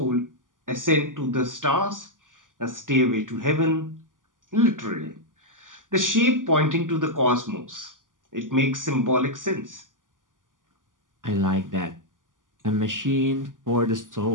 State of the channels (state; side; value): late; left; 0.88 ms